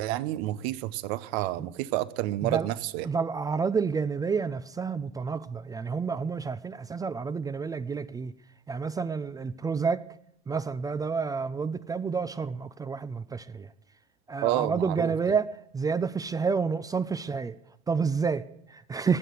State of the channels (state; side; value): quieter; left; 6.1 dB